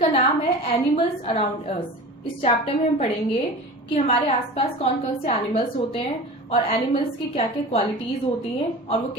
नाम है एनिमल्स अराउंड अस। इस चैप्टर में हम पढ़ेंगे कि हमारे आसपास कौन कौन से एनिमल्स होते हैं और एनिमल्स की क्या क्या क्वालिटीज होती हैं और वो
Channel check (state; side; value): normal; both; correlation 0.35